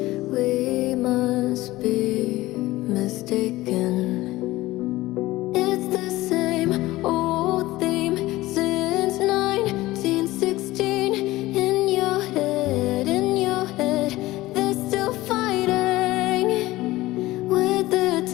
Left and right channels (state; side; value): quieter; right; 17.9 dB